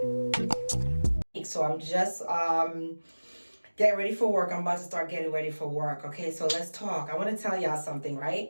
So I'm just getting ready for work. I'm about to start getting ready for work. Okay, so let's talk. I want to tell y'all something,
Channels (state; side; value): inverted; both; correlation -1.00